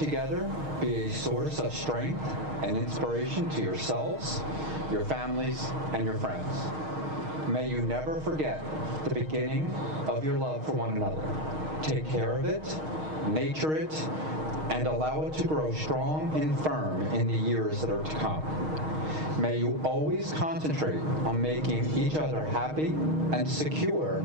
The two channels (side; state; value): left; late; 6.4 ms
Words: be a source of strength and inspiration to yourselves, your families, and your friends. May you never forget the beginning of your love for one another. Take care of it, nurture it, and allow it to grow strong and firm in the years that are to come. May you always concentrate on making each other happy and secure